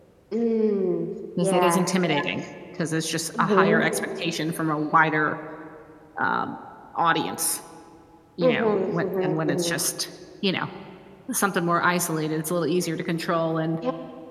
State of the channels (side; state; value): both; identical; correlation 1.00